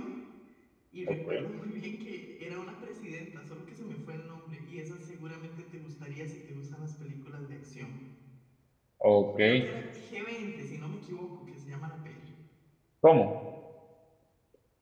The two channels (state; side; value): identical; both; correlation 1.00